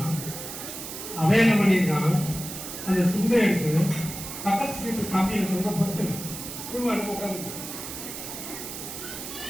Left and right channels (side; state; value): right; noise; hiss, 9 dB below the sound